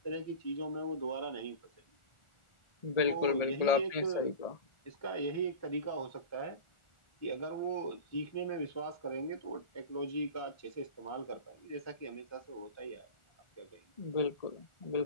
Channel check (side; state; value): right; late; 1.4 ms